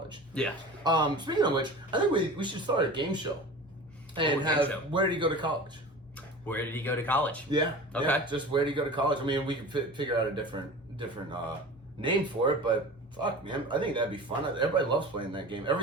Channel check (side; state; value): both; normal; correlation 0.36